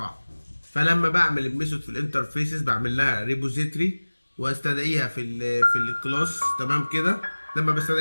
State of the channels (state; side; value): inverted; both; correlation -1.00